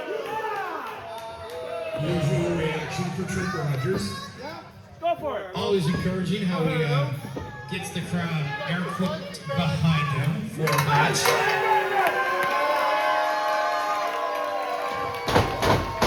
Usual reaction for Trip Rogers. Go for it. Always encouraging how he gets the crowd air quote behind him for a match.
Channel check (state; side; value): identical; both; correlation 1.00